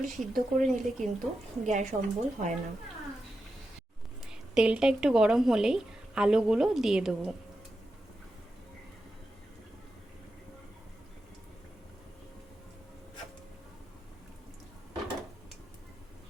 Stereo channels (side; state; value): both; normal; correlation 0.89